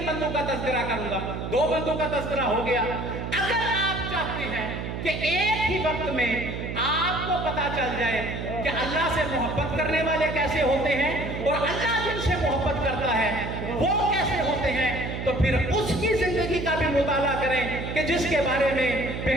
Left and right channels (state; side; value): noise; right; hum, 5 dB below the sound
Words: بندوں کا تذکرہ کروں گا، 2 بندوں کا تذکرہ ہو گیا۔ اگر آپ چاہتے ہیں کہ ایک ہی وقت میں آپ کو پتا چل جائے کہ اللہ سے محبت کرنے والے کیسے ہوتے ہیں اور اللہ جن سے محبت کرتا ہے وہ کیسے ہوتے ہیں، تو پھر اس کی زندگی کا بھی مطالعہ کریں کہ جس کے بارے میں